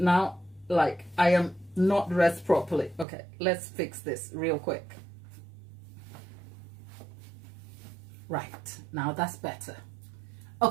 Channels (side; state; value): left; drops out; at 3.1 s